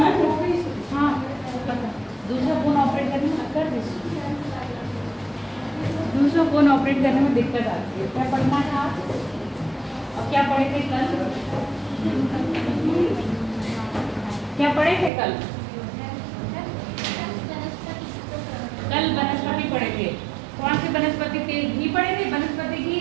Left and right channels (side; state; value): left; drops out; at 15.1 s